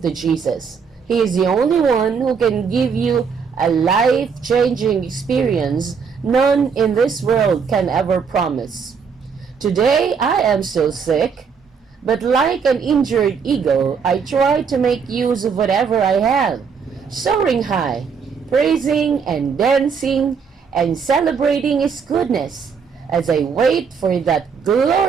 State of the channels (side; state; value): left; quieter; 6.1 dB